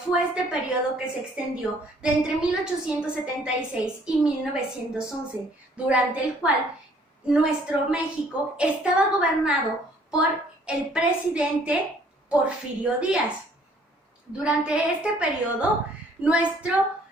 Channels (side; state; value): both; normal; correlation 0.60